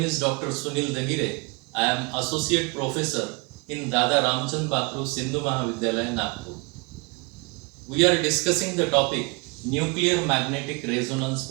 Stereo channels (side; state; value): left; quieter; 29.9 dB